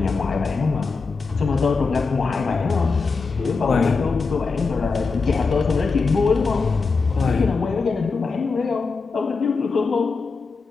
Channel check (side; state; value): right; quieter; 4.4 dB